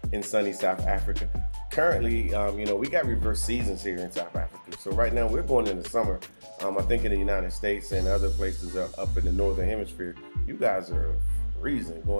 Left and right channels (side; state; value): both; inverted; correlation -1.00